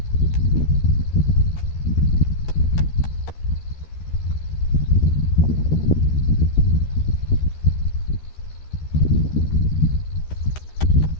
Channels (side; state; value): right; late; 13 ms